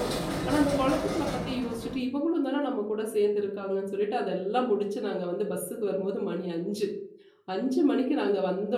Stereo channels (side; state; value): both; identical; correlation 1.00